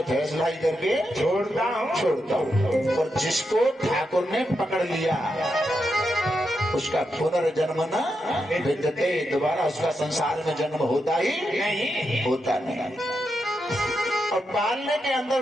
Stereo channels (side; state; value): both; normal; correlation 0.85